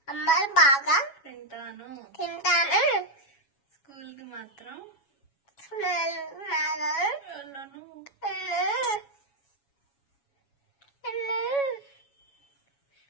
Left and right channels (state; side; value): late; right; 7.2 ms